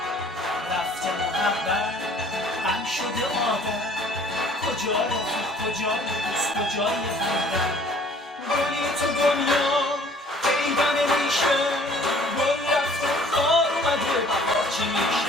رفته محبت غم شده آدم، کجا رفیق کجای دوست کجای همدم؟ گلی تو دنیا پیدا نمیشه، گل رفته خار اومده بهار چی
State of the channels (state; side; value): normal; both; correlation 0.54